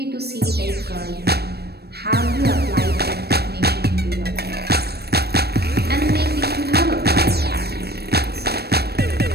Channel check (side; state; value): left; late; 0.47 ms